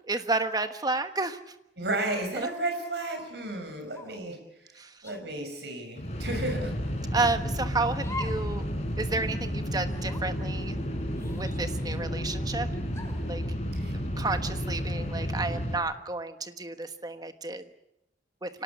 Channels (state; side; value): normal; both; correlation 0.44